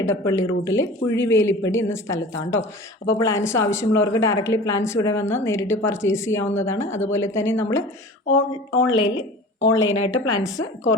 എടപ്പള്ളി റൂട്ടിലെ കുഴിവേലിപ്പടി എന്ന സ്ഥലത്താണ് കേട്ടോ. അപ്പോൾ പ്ലാന്റ്സ് ആവശ്യമുള്ളവർക്ക് ഡയറക്റ്റ്ലി പ്ലാന്റ്സ് ഇവിടെ വന്ന് നേരിട്ട് പർച്ചേസ് ചെയ്യാവുന്നതാണ്. അതുപോലെ തന്നെ നമ്മൾ ഓൺലൈനായിട്ട് പ്ലാന്റ്സ്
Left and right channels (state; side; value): normal; both; correlation 0.39